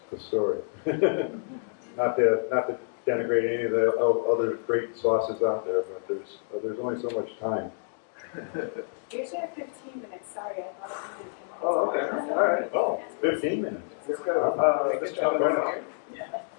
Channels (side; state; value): right; silent; digital silence